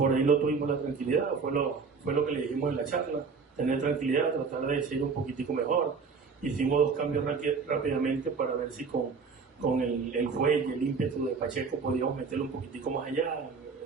ahí no tuvimos la tranquilidad, fue lo que le dijimos en la charla, tener tranquilidad, tratar de seguir un poquitico mejor. Hicimos 2 cambios rápidamente para ver si con el fuelle, el ímpetu de Pacheco podíamos meterlo un poquitico más allá,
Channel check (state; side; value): quieter; left; 5.1 dB